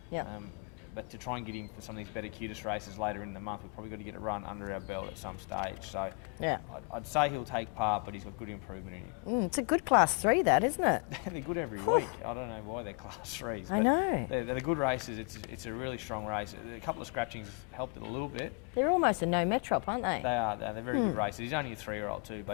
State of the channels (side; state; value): right; quieter; 34.6 dB